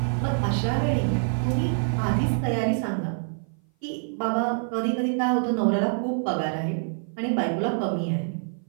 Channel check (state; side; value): silent; left; 56 dB below the other